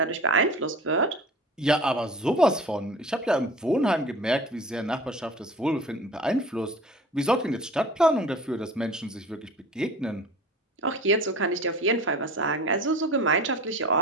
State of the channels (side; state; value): both; normal; correlation 0.40